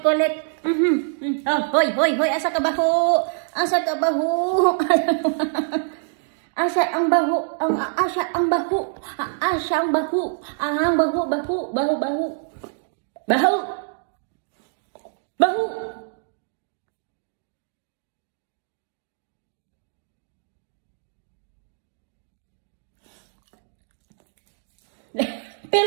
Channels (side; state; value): left; silent; digital silence